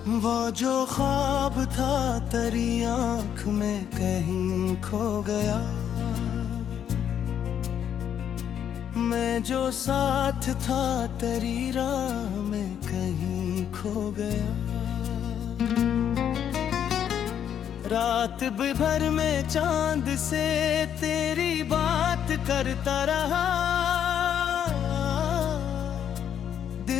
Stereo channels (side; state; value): right; quieter; 9.1 dB